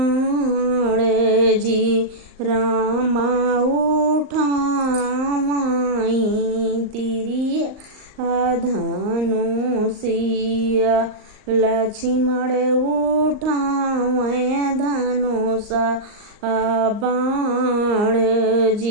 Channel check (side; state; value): left; late; 38 ms